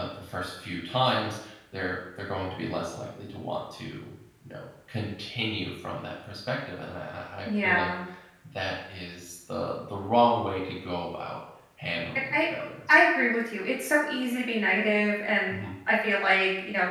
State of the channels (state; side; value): identical; both; correlation 1.00